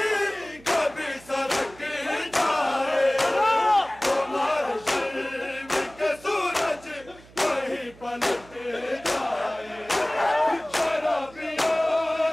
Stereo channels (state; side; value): noise; right; hum, 23 dB below the sound